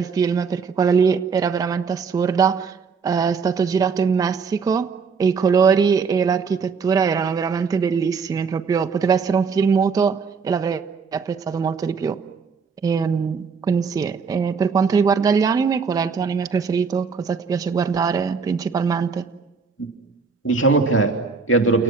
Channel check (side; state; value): left; quieter; 5.4 dB